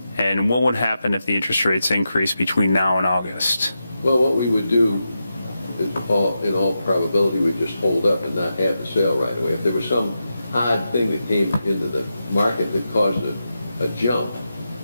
And what would happen if the interest rates increase between now and August? Well, what we would do, in all probability, we'd just hold up and not have the sale right away. If there was some odd thing that came into the market that caused a jump,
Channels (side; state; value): both; inverted; correlation -0.88